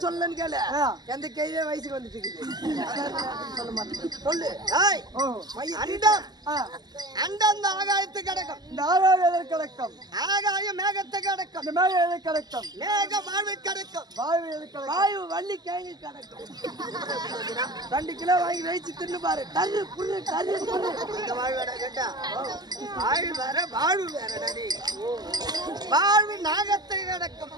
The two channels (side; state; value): left; late; 0.20 ms